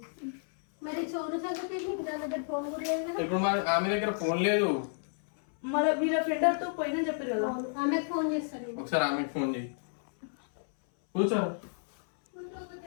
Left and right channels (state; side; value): silent; right; 57 dB below the other